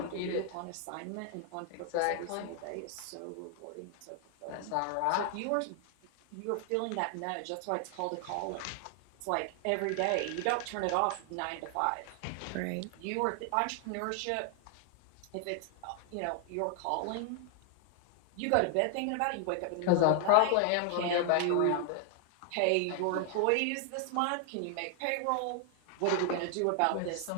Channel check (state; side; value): different; both; correlation 0.00